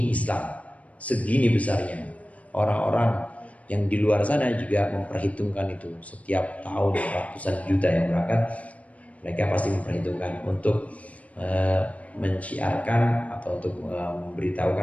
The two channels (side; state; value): right; late; 0.067 ms